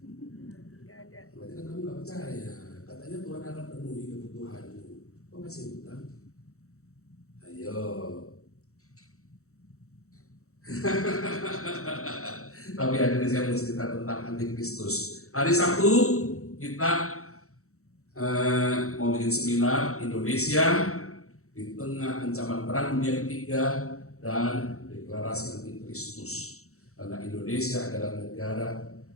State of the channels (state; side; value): late; right; 0.64 ms